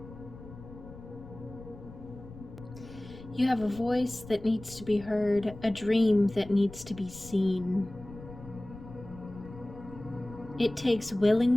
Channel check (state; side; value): noise; left; rumble, 16 dB below the sound